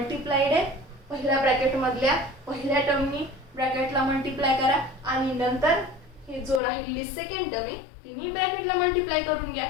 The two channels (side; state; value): right; drops out; at 6.6 s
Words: आहे, पहिल्या ब्रॅकेट मधल्या पहिल्या टर्मनी ब्रॅकेटला मल्टिप्लाय करा आणि नंतर हे जो राहिलेली सेकंड टर्म आहे तिन्ही ब्रॅकेटला मल्टिप्लाय करून घ्या.